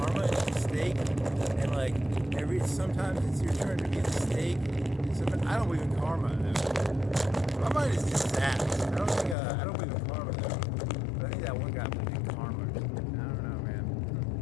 as a snake, and like sometimes it's your turn to be a snake, and sometimes I don't believe in karma, dude. My mind is just that. I don't believe in karma, though. But I think that one guy believed in karma. I don't know, man.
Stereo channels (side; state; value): right; drops out; at 9.3 s